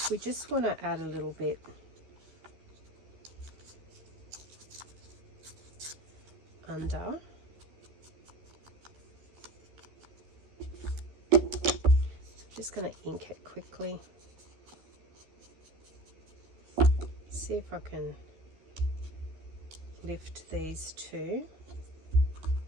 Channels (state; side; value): late; left; 12 ms